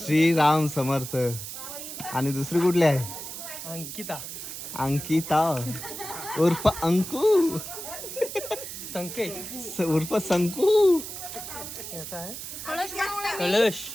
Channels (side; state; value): right; noise; hiss, 9 dB below the sound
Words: समर्थ. आणि दुसरी कुठली आहे? अंकिता. अंकिता उर्फ अंकू. संकेत उर्फ संकू. याचा आहे कलश.